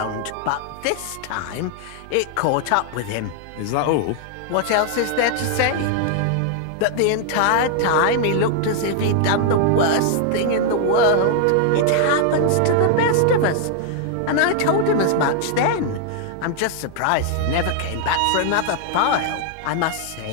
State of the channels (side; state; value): both; different; correlation 0.00